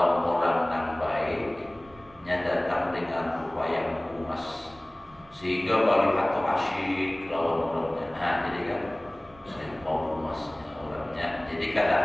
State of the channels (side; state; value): right; noise; rumble, 26 dB below the sound